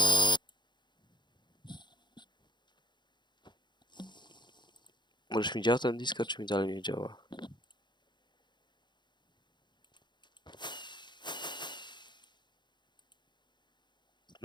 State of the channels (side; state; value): right; late; 0.22 ms